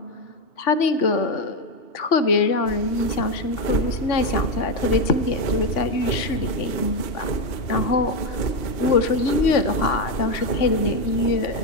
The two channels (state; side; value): late; right; 2.8 ms